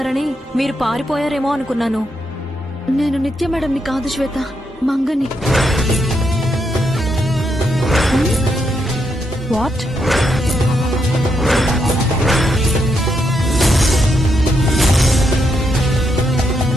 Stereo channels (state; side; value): normal; both; correlation 0.80